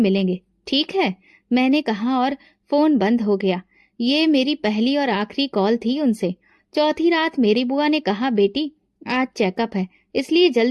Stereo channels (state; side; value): identical; both; correlation 1.00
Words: ठीक है, मैंने कहा और फोन बंद हो गया। ये मेरी पहली और आखिरी कॉल थी उनसे। चौथी रात मेरी बुआ ने कहा, बेटी आज चेकअप है, इसलिए